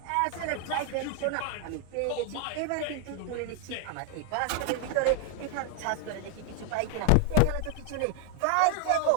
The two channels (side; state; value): both; different; correlation 0.00